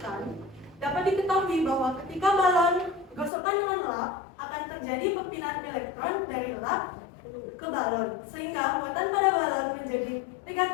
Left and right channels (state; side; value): drops out; right; at 3.3 s